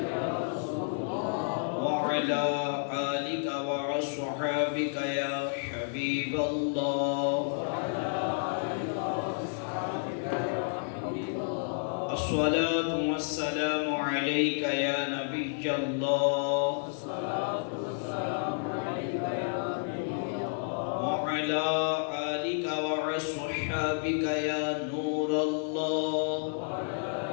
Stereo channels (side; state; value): right; silent; digital silence